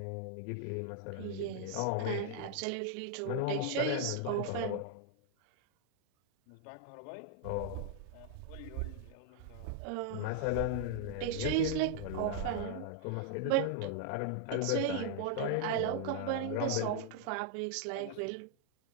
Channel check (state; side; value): different; both; correlation -0.01